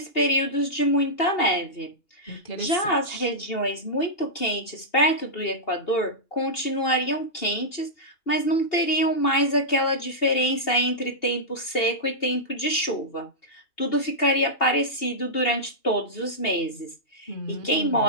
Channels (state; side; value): late; right; 2.8 ms